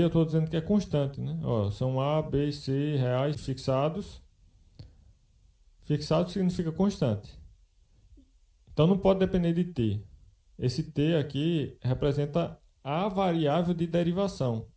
eu estou dizendo que é constante, né? São a, b e c reais fixados. Fixado significa constante. Então não pode depender de t. Esse t aqui representa a variável de derivação.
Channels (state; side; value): identical; both; correlation 1.00